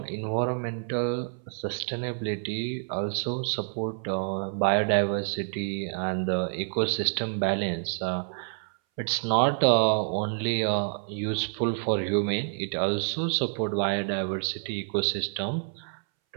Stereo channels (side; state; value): left; silent; 59 dB below the other